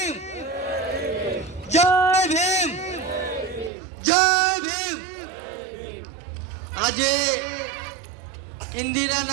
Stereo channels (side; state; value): left; drops out; at 3.7 s